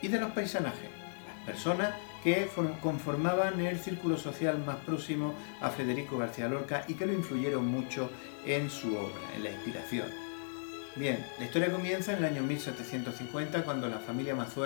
y de los paisanajes, las personas que conformaban el círculo social más próximo a Federico García Lorca y que lo influyeron mucho en su obra, en la inspiración. Bien, la historia comienza en el año 1750 cuando la familia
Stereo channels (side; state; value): right; silent; digital silence